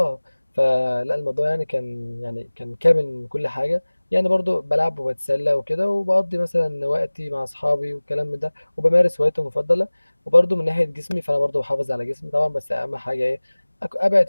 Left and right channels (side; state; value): both; inverted; correlation -1.00